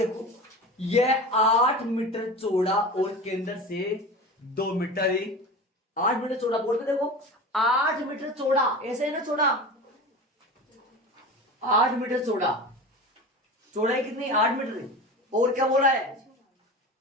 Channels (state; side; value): normal; both; correlation 0.31